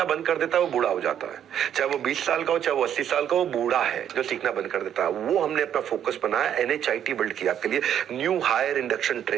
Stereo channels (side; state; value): left; quieter; 9.7 dB